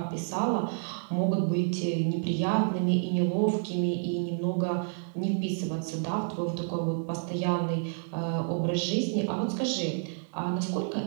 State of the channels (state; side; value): silent; left; 58 dB below the other